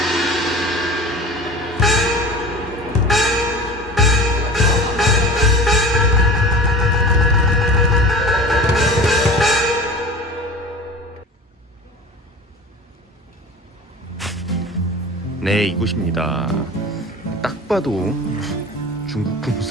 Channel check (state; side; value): normal; both; correlation 0.36